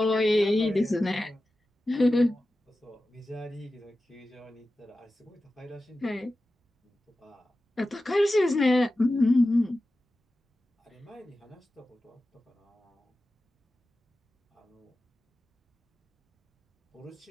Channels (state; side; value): normal; both; correlation 0.94